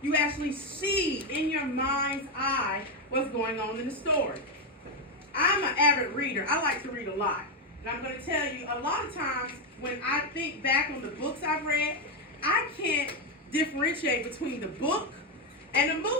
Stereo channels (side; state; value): both; normal; correlation 0.06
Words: you actually see in your mind's eye what's going on in the story. I'm an avid reader. I like to read a lot. And I'm going to tell you, a lot of times when I think back on the books I've read, I can't differentiate between the book and the